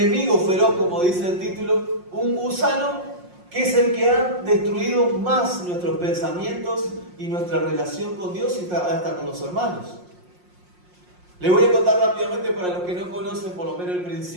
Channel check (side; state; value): left; late; 5.6 ms